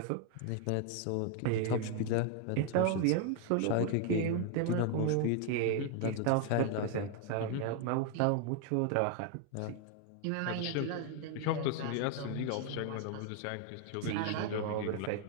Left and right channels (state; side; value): different; both; correlation 0.00